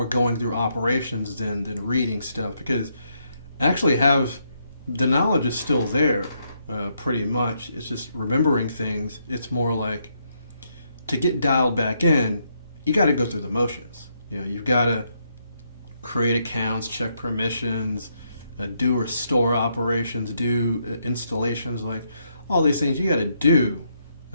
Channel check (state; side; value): inverted; both; correlation -0.77